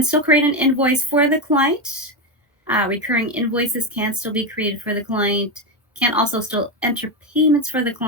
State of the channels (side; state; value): both; normal; correlation 0.12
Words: still create an invoice for the client. Recurring invoices can still be created for the client, can also still enter payments for the